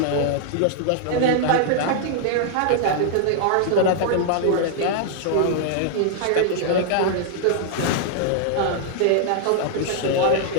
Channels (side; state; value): both; different; correlation 0.00